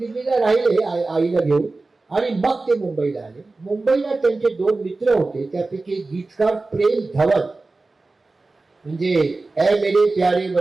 राहिले आईला घेऊन आणि मग ते मुंबईला आले. मुंबईला त्यांचे 2 मित्र होते, त्यापैकी एक गीतकार प्रेम धवन, म्हणजे ए मेरे प्यारे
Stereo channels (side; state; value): left; quieter; 3.4 dB